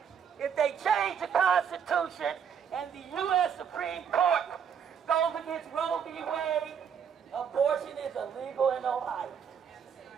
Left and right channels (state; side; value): quieter; left; 7.6 dB